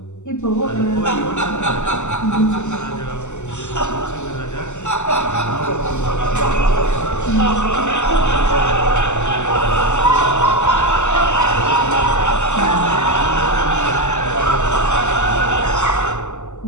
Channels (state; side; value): late; right; 0.83 ms